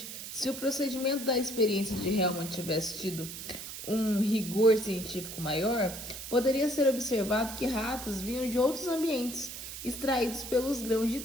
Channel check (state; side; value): noise; right; hiss, 9 dB below the sound